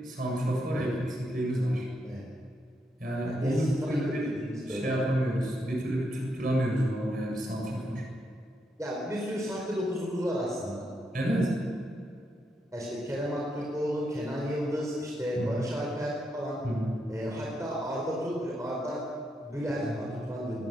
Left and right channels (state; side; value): normal; both; correlation 0.81